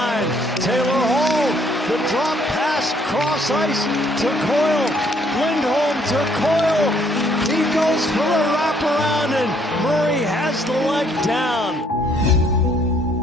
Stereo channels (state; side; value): normal; both; correlation 0.66